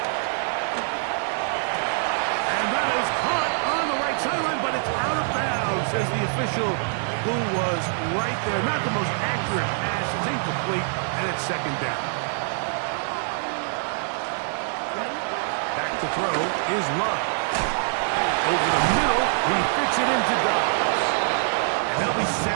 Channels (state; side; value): silent; left; 62 dB below the other